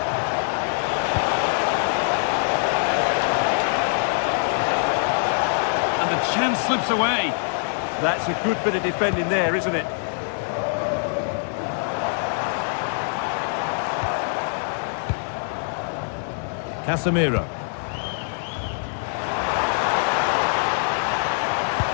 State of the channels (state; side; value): silent; right; digital silence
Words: And the chance slips away. That's a good bit of defending there, isn't it? Casemiro.